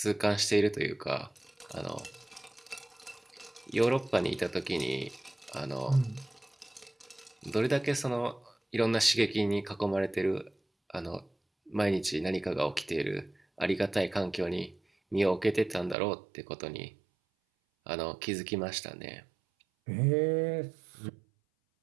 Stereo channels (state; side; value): drops out; left; at 16.0 s